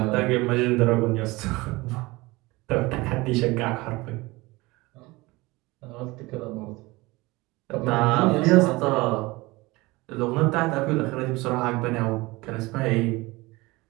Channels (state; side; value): quieter; left; 22.0 dB